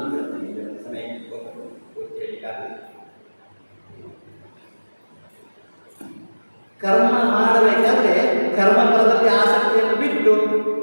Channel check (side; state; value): both; inverted; correlation -1.00